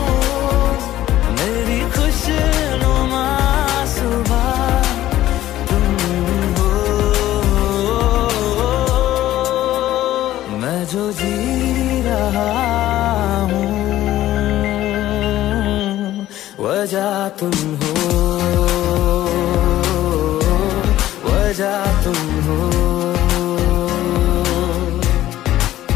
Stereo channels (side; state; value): right; quieter; 14.1 dB